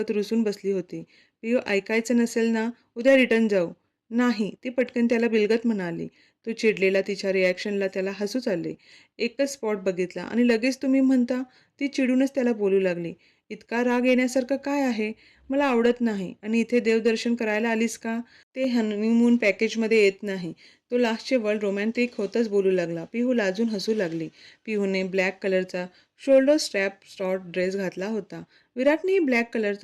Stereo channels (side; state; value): both; identical; correlation 1.00